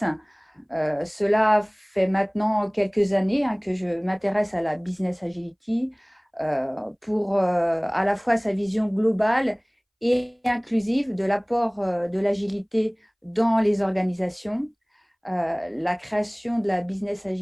Cela fait maintenant quelques années que je m'intéresse à la business agility pour à la fois sa vision globale et inclusive de l'apport de l'agilité dans les organisations. La création de la business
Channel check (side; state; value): both; identical; correlation 1.00